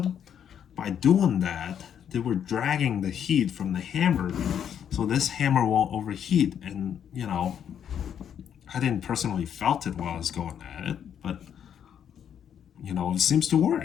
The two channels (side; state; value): right; quieter; 8.9 dB